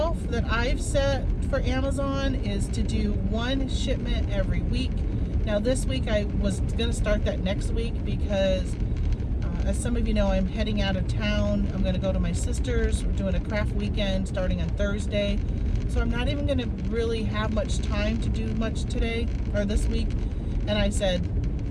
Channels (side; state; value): both; identical; correlation 1.00